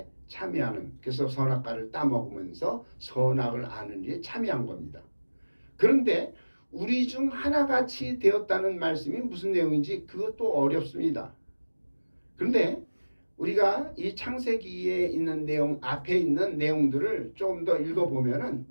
참여하는 그래서 선악과를 따먹으면서 선악을 아는 일에 참여한 겁니다. 그런데 우리 중 하나같이 되었다는 말씀이 무슨 내용인지 그것도 어렵습니다. 그런데 우리가 이 창세기에 있는 내용 앞에 있는 내용들을 좀 더 읽어보면은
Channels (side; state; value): both; inverted; correlation -1.00